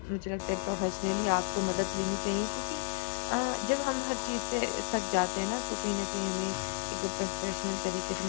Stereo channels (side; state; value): right; silent; digital silence